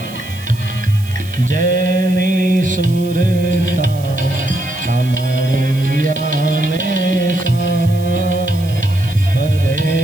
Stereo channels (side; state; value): right; noise; hiss, 19 dB below the sound